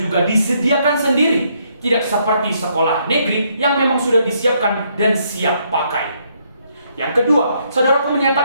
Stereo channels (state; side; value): inverted; both; correlation -0.72